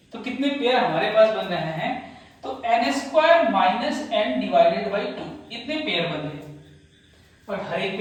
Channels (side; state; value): both; identical; correlation 1.00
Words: तो कितने पेयर हमारे पास बन रहे हैं, तो n² minus n divided by 2 इतने पेयर बन रहे हैं। और हर एक